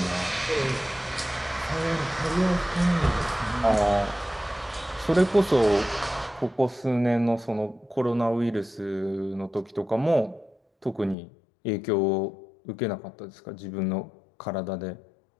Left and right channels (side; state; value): right; drops out; at 11.2 s